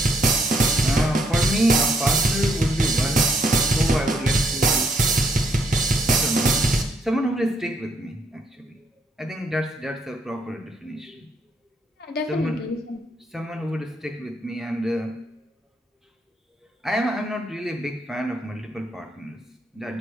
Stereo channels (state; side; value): normal; both; correlation 0.71